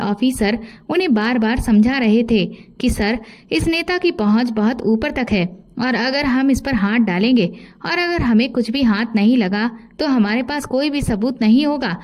उन्हें बार बार समझा रहे थे कि सर, इस नेता की पहुंच बहुत ऊपर तक है और अगर हम इस पर हाथ डालेंगे और अगर हमें कुछ भी हाथ नहीं लगा तो हमारे पास कोई भी सबूत नहीं होगा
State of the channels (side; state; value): both; identical; correlation 1.00